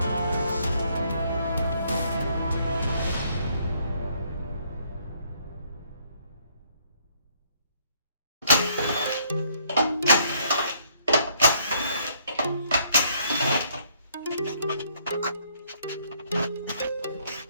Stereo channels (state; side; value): inverted; both; correlation -0.68